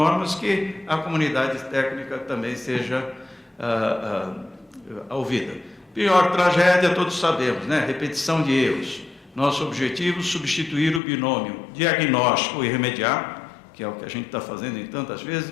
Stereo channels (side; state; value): right; drops out; at 11.0 s